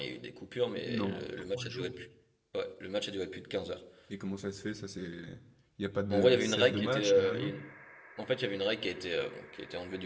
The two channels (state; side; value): identical; both; correlation 1.00